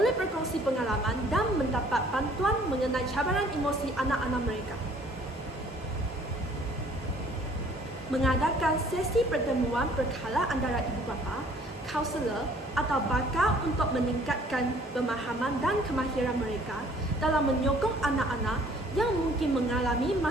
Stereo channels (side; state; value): both; normal; correlation 0.57